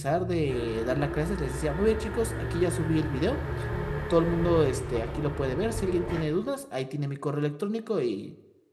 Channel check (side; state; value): both; identical; correlation 1.00